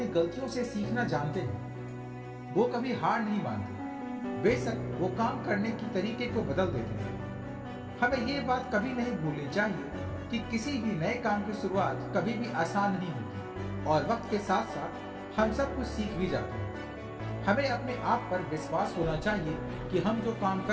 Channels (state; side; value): identical; both; correlation 1.00